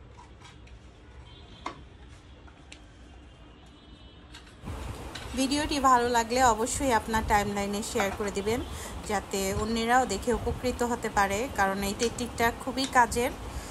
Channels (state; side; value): identical; both; correlation 1.00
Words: ভিডিওটি ভালো লাগলে অবশ্যই আপনার টাইমলাইনে শেয়ার করে দিবেন, যাতে অন্যরাও দেখে উপকৃত হতে পারে, কারণ এই টেকনিকটা খুবই কাজের